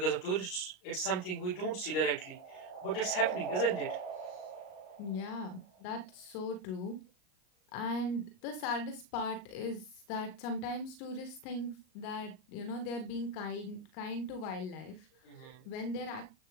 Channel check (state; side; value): late; right; 38 ms